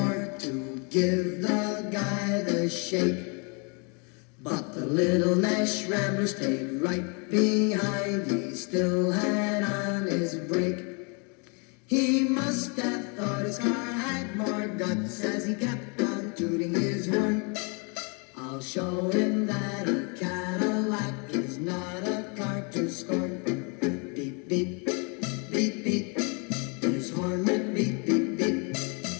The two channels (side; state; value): right; quieter; 34.5 dB